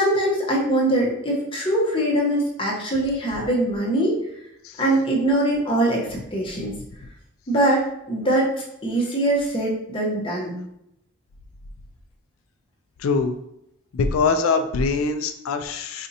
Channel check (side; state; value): both; normal; correlation 0.23